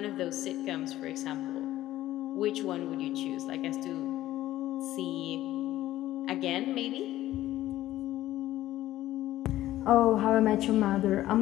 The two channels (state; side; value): quieter; right; 14.5 dB